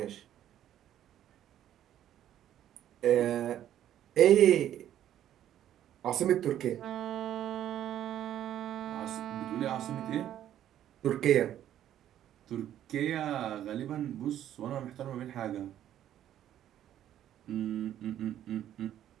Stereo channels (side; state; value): left; quieter; 11.4 dB